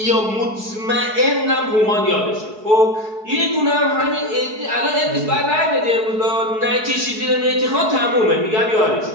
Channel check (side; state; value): left; late; 4.7 ms